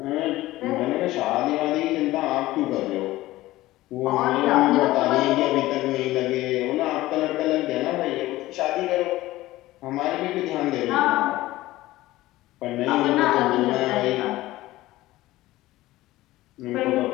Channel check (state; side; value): quieter; right; 17.1 dB